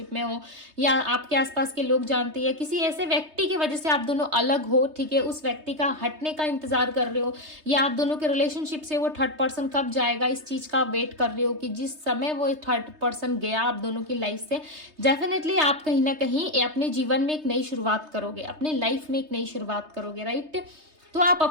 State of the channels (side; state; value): left; late; 3.2 ms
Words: में हो, या आपके आसपास के लोग जानते हैं, किसी ऐसे व्यक्ति की वजह से आप दोनों अलग हो। ठीक है, उस व्यक्ति का हटने का इंतजार कर रहे हो, या आप दोनों के रिलेशनशिप से वो थर्ड पर्सन कब जाएगा इस चीज का वेट कर रहे हो कि जिस समय वो थर्ड पर्सन गया आप दोनों की लाइफ से, डेफिनेटली आप कहीं ना कहीं अपने जीवन में एक नई शुरुआत करोगे, अपने लाइफ में एक नई शुरुआत करोगे। राइट, तो आप